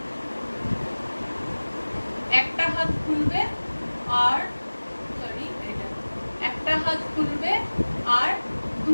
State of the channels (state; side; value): inverted; both; correlation -1.00